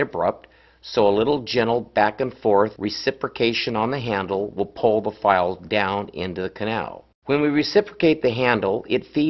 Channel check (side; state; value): both; identical; correlation 1.00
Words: abrupt, so a little gentle back and forth reciprocation on the handle will pull the file down into the canal. When we reciprocate the handle, it